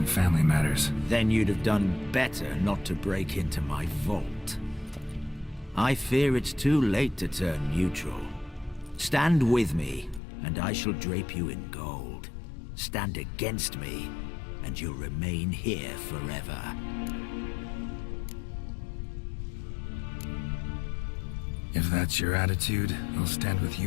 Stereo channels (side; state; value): right; drops out; at 10.2 s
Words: family matters. Then you'd have done better not to break into my vault. I fear it's too late to turn neutral. Stand with me, and I shall drape you in gold. Stand against me, and you'll remain here forever. If that's your attitude, I'll stand with